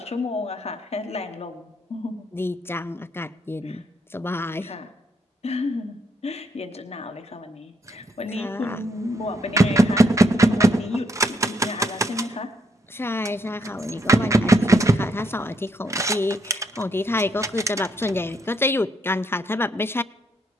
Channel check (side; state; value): both; normal; correlation 0.75